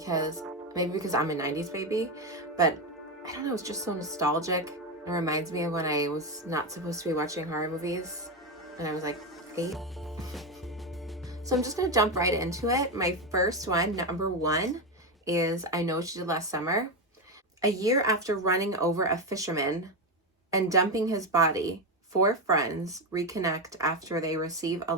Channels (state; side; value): normal; both; correlation 0.12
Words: I'm a 90s baby, but I don't know, it's just so nostalgic. It reminds me of when I was not supposed to be watching horror movies and I was like 8. So I'm just going to jump right into it. My first one, number 1, is I Know What You Did Last Summer. A year after running over a fisherman and dumping his body, 4 friends reconnect after they receive a